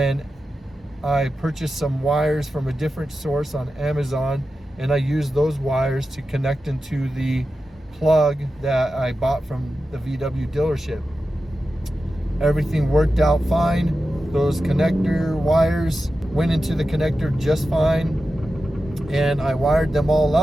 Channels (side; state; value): both; normal; correlation 0.92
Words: I purchased some wires from a different source on Amazon, and I used those wires to connect into the plug that I bought from the VW dealership. Everything worked out fine. Those connector wires went into the connector just fine, and I wired them all